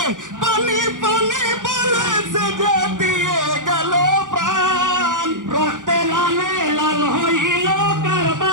পানি পানি বলে সে যে দিয়ে গেল প্রাণ রক্তে লালে লাল হইল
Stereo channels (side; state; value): left; late; 0.88 ms